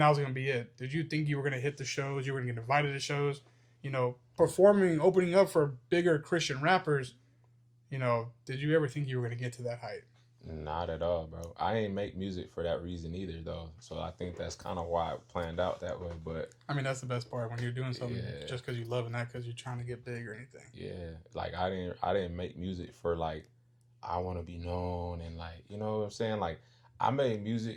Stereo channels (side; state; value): both; identical; correlation 1.00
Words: was going to be it? Did you think you were going to hit the shows, you were going to get invited to shows, performing, opening up for bigger Christian rappers? Did you ever think you were going to get to that height? Not at all, bro. I ain't make music for that reason either, though. So I think that's kind of why it planned out that way. But I mean, that's the best part when you're doing something just because you love it, not because you're trying to get big or anything. Yeah, like I didn't make music for like I want to be known and like you know what I'm saying. Like I made